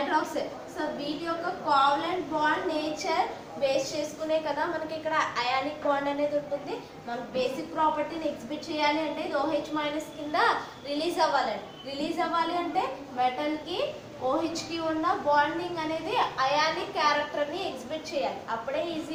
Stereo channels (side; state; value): both; identical; correlation 1.00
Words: సో వీటి యొక్క కోవలెంట్ బాండ్ నేచర్ బేస్ చేసుకునే కదా మనకి ఇక్కడ అయానిక్ బాండ్ అనేది ఉంటుంది. మనకు బేసిక్ ప్రాపర్టీని ఎగ్జిబిట్ చేయాలి అంటే ఇది OH మైనస్ కింద రిలీజ్ అవ్వాలి అంటే మెటల్కి OHకి ఉన్న బాండింగ్ అనేది అయానిక్ క్యారెక్టర్ని ఎగ్జిబిట్ చేయాలి. అప్పుడే